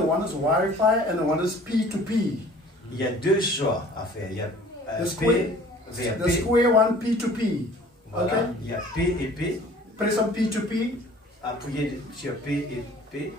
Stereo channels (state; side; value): normal; both; correlation 0.49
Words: one is Wi-Fi and the one is P2P. Il y a deux choix à faire. Il y a The P square, vers the P. square one P2P. Voilà. Okay? Il y a P et P. Press on P2P. Appuyez sur P et P.